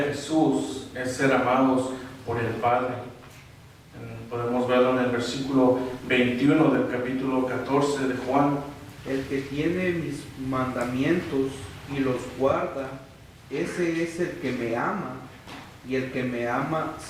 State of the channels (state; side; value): identical; both; correlation 1.00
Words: Jesús es ser amados por el Padre. Podemos verlo en el versículo 21 del capítulo 14 de Juan. El que tiene mis mandamientos y los guarda, ese es el que me ama, y el que me ama